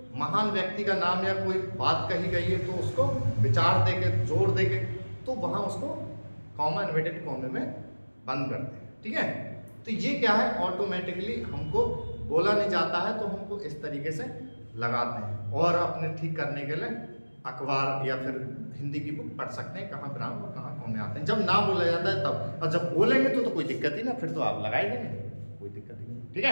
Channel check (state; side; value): inverted; both; correlation -1.00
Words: महान व्यक्ति का नाम या कोई बात कही गई है तो उसको विचार देके जोर देके तो वहां उसको कॉमा इन्वर्टेड कॉमे में बंद करते हैं। ठीक है, तो ये क्या है, ऑटोमेटिकली हमको बोला नहीं जाता है तो हमको इस तरीके से लगाते हैं। और अपने ठीक करने के लिए अखबार या फिर हिंदी की बुक पढ़ सकते हैं, कहाँ विराम और कहाँ कॉमे आते हैं। जब ना बोला जाता है तब, और जब बोलेंगे तो कोई दिक्कत ही ना, फिर तो आप लगा ही देंगे, कोई दिक्कत ही नहीं। ठीक